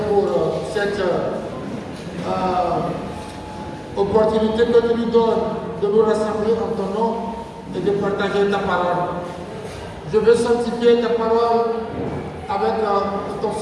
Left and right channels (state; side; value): identical; both; correlation 1.00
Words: pour cette opportunité que tu nous donnes de nous rassembler en ton nom et de partager ta parole. Je veux sanctifier ta parole avec ton